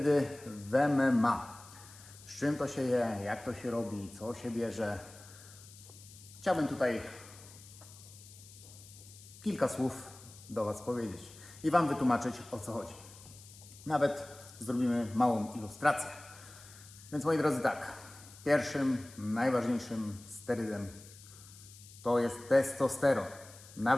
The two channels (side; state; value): left; noise; hiss, 19 dB below the sound